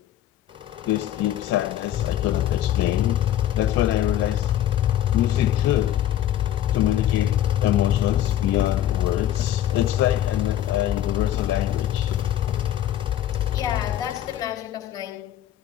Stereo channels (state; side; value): quieter; right; 12.1 dB